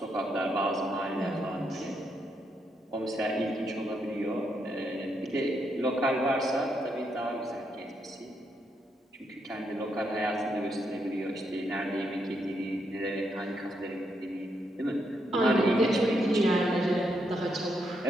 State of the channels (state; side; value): normal; both; correlation 0.79